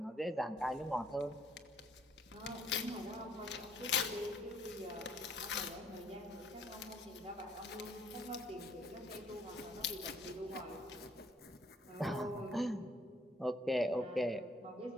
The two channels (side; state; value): both; normal; correlation 0.63